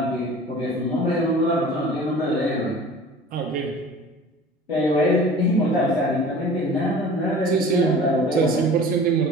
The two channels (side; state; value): both; normal; correlation 0.43